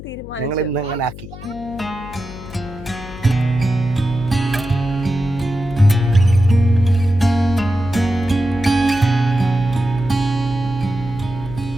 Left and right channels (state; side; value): noise; left; hum, 14 dB below the sound